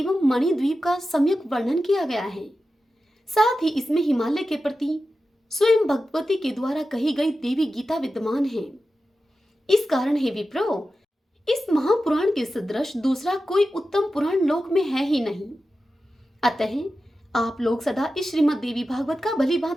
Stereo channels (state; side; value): normal; both; correlation 0.92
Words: मणिद्वीप का सम्यक वर्णन किया गया है। साथ ही इसमें हिमालय के प्रति स्वयं भगवती के द्वारा कही गई देवी गीता विद्यमान है। इस कारण हे विप्रो, इस महापुराण के सदृश दूसरा कोई उत्तम पुराण लोक में है ही नहीं। अतः आप लोग सदा इस श्रीमद् देवी भागवत का भली